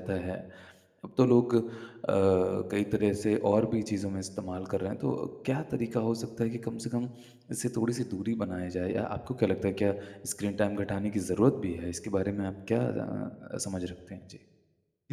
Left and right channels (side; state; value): both; identical; correlation 1.00